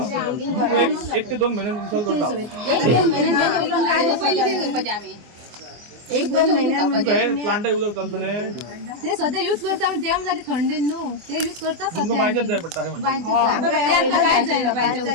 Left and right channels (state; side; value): late; left; 24 ms